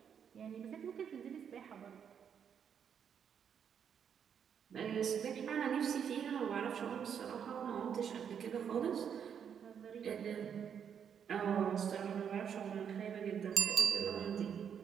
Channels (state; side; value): quieter; left; 7.9 dB